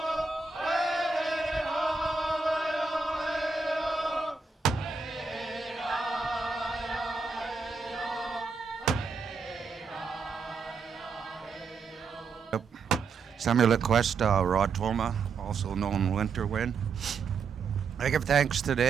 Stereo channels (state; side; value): quieter; left; 4.9 dB